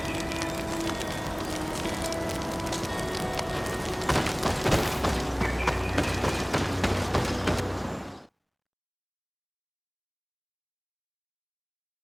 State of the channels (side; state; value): both; identical; correlation 1.00